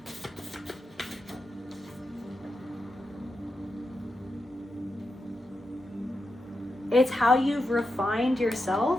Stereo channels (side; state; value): both; normal; correlation 0.88